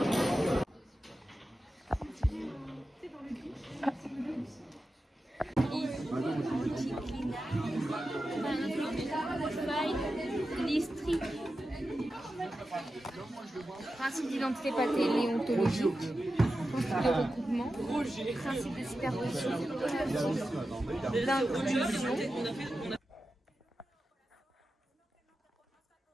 Principe d'identité paléontologique, principe de recoupement, principe de superposition, d'inclusion.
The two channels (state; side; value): normal; both; correlation 0.92